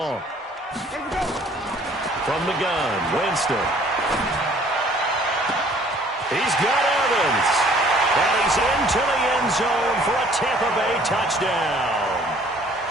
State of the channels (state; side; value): normal; both; correlation 0.56